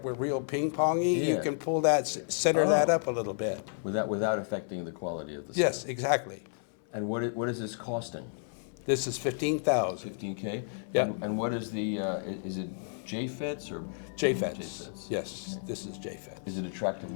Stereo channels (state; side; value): silent; right; 57 dB below the other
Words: were real ping-pongy, you can pull that, center that up a little bit. Without affecting the quality of the sound. Yes, exactly. And what is this costing? This is $15,000. $15K. Yeah. And what is the? Is it JFETs or JFETs? JFETs. Yes. Okay. This is JFET. Is it attractive